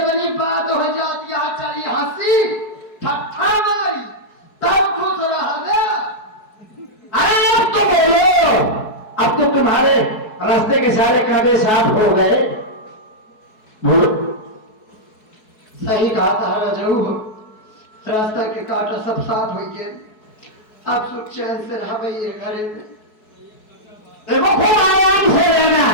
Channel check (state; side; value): late; right; 4.7 ms